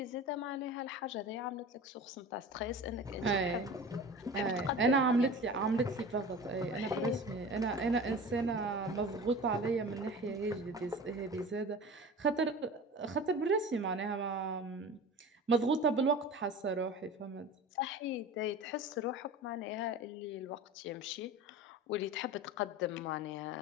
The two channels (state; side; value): normal; both; correlation 0.36